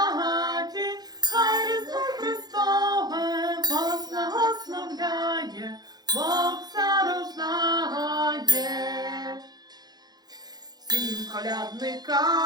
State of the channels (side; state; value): left; late; 0.19 ms